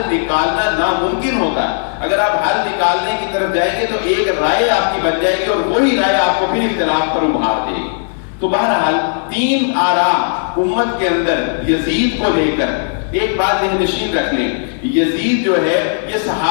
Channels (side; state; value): right; silent; 64 dB below the other